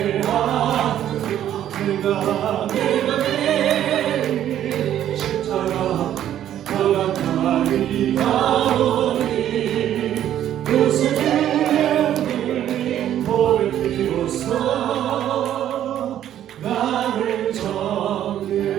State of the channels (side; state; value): left; quieter; 11.2 dB